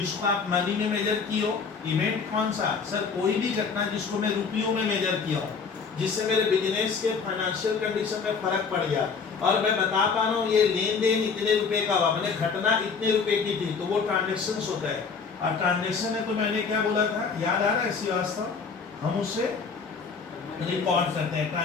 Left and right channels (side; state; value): right; quieter; 5.4 dB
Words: आप मनी में मेजर किए हो, इवेंट कौन सा? सर कोई भी घटना जिसको मैं रुपयों में मेजर किया हूँ, जिससे मेरे बिजनेस के फाइनेंशियल कंडीशन में फर्क पड़ गया, और मैं बता पा रहा हूँ ये लेन देन इतने रुपए का हुआ, मैंने घटना इतने रुपए की थी, तो वो ट्रांजेक्शन होता है। और ट्रांजेक्शन है तो मैंने क्या बोला था, याद आ रहा है श्रीवास्तव? हम उसे रिकॉर्ड करते हैं।